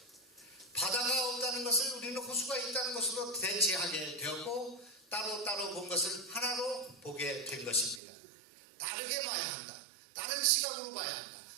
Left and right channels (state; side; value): drops out; left; at 8.0 s